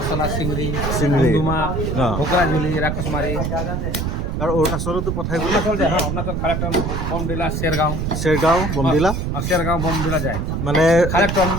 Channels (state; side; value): noise; right; rumble, 1 dB below the sound